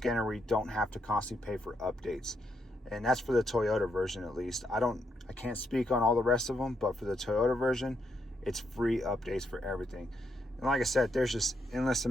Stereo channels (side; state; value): both; normal; correlation 0.78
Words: where you don't have to constantly pay for updates. And that's for the Toyota version, at least. I can't speak on all the rest of them, but for the Toyota version, it's free updates for everything. And like I said, there's just endless